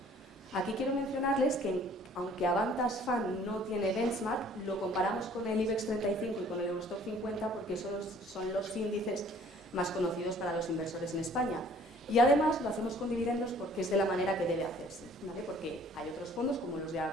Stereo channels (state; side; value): normal; both; correlation 0.54